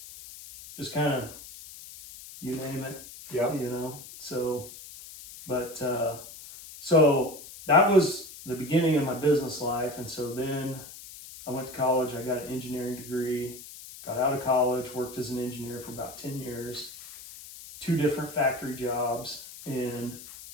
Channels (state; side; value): noise; left; hiss, 15 dB below the sound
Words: just kind of, you name it. Yeah. So that was the beginning of my business life. And so then I went to college, I got an engineering degree, got out of college, worked as an engineer for about 10 years, 2 different factory jobs. And